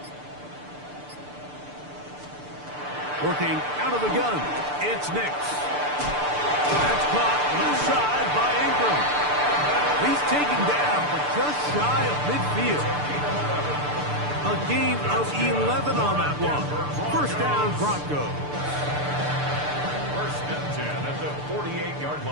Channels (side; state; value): left; late; 6.8 ms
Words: Working out of the gun, it's Nix. That's caught left side by Ingram. He's taken down, but just shy of midfield. A gain of 11 on that one. First down, Broncos. First and 10 at the 48-yard